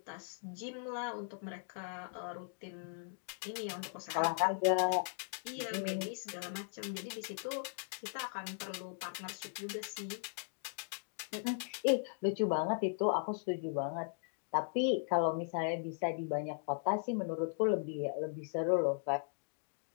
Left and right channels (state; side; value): silent; right; digital silence